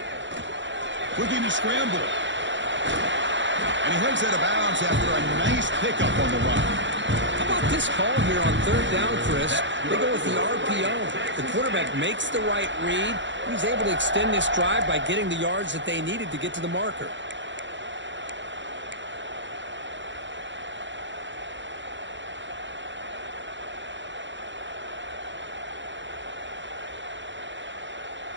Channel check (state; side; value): late; left; 0.54 ms